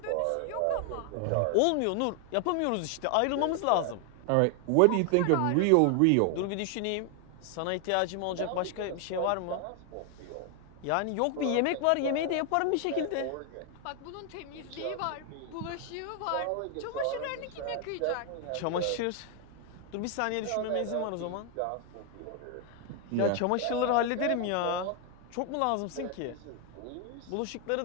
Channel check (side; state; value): both; different; correlation 0.00